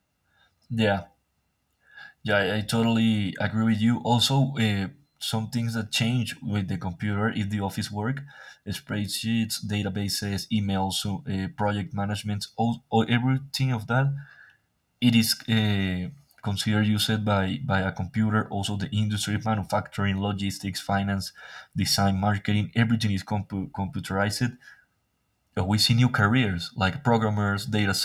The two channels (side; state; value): both; identical; correlation 1.00